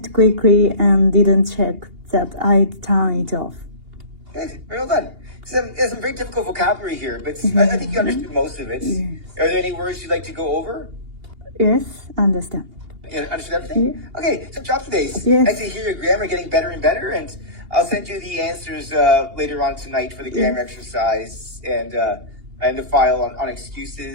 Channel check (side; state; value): left; late; 2.8 ms